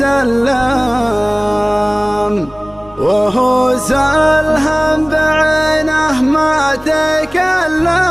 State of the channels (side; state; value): right; noise; rumble, 26 dB below the sound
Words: وهو سلهم بعينه ما تكلم.